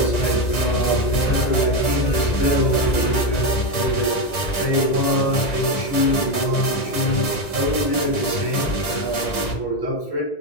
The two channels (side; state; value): right; late; 1.9 ms